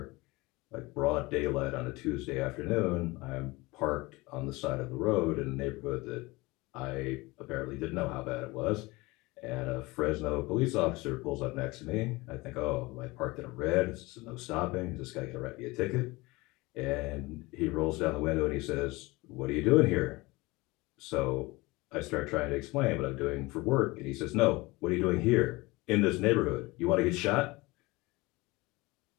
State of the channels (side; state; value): right; quieter; 22.5 dB